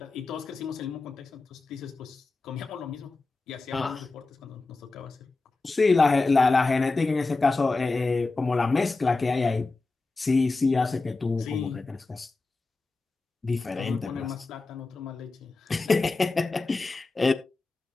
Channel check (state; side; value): quieter; right; 3.6 dB